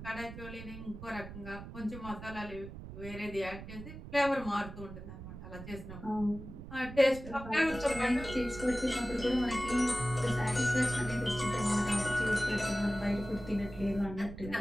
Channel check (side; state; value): right; noise; rumble, 12 dB below the sound